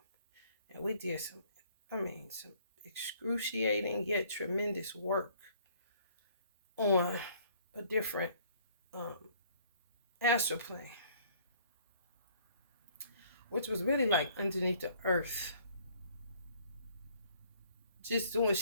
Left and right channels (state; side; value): inverted; both; correlation -0.60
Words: And we did some excruciating yet tremendous work on a different astral plane, which was really like underneath the earth. Just doing